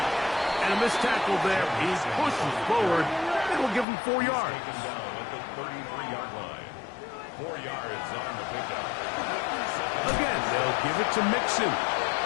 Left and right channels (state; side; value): drops out; right; at 3.9 s